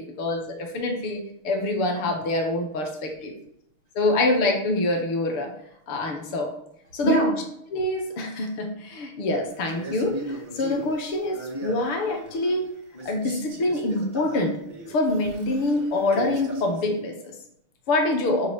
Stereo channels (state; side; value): late; right; 6.5 ms